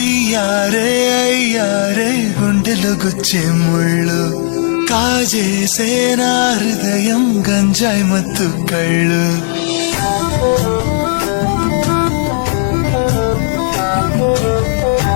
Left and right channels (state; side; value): silent; right; digital silence